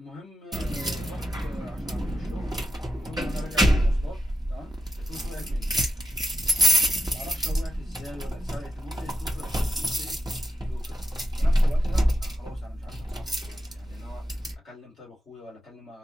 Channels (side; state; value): both; normal; correlation 0.87